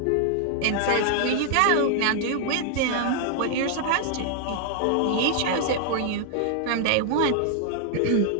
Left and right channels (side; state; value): both; different; correlation 0.00